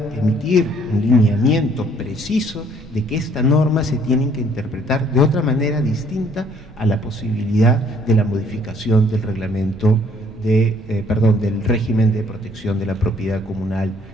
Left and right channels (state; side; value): normal; both; correlation 0.61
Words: emitir un lineamiento preciso de que esta norma se tiene que interpretar de otra manera distinta a la posibilidad de la modificación del reglamento del régimen de protección de la propiedad comunal